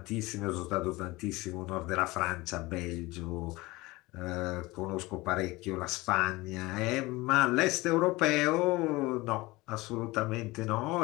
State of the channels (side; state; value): right; quieter; 21.1 dB